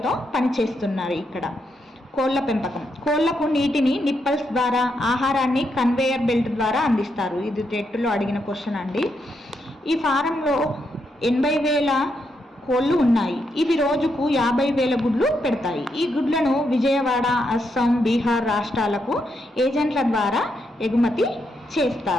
పనిచేస్తున్నారు. ఇక్కడ కోళ్ల పెంపకం. కోళ్లకు నీటిని నిప్పల్స్ ద్వారా, ఆహారాన్ని కన్వేయర్ బెల్ట్ ద్వారా అందిస్తారు. ఇది టెట్లో అడిగిన క్వశ్చన్ అండి. ఈ ఫారంలో 80,000 కోళ్ళు ఉన్నాయి. ఇవి రోజుకు 50,000 గుడ్లు పెడతాయి. ఈ గుడ్లను విజయవాడ, అస్సాం, బీహార్ రాష్ట్రాలకు ఏజెంట్ల ద్వారా ఎగుమతి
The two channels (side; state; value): both; normal; correlation 0.80